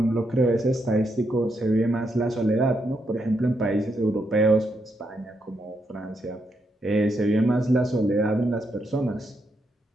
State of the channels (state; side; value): normal; both; correlation 0.80